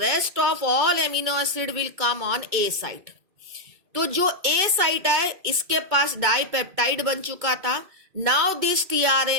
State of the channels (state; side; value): late; left; 2.3 ms